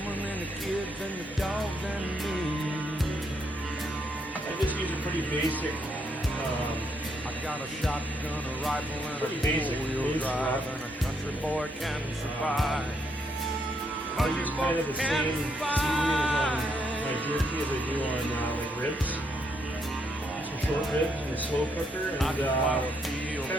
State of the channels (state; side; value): normal; both; correlation 0.75